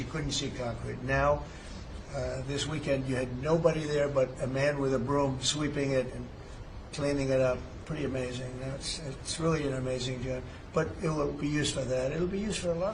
couldn't see concrete. Now, this weekend, you had nobody there but a man with a broom sweeping it and cleaning it up. Pretty amazing. It's really an amazing job. But it will be used for that. It'll be used for a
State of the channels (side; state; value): both; identical; correlation 1.00